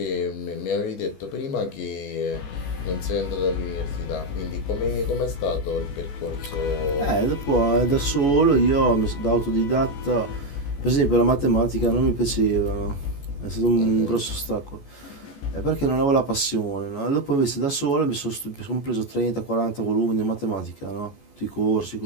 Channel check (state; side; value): late; right; 14 ms